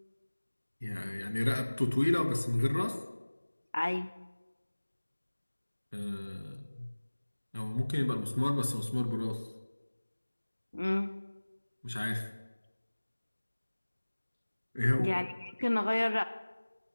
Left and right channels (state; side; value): inverted; both; correlation -1.00